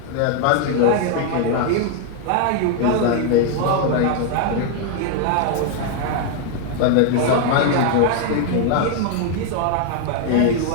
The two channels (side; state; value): both; different; correlation 0.00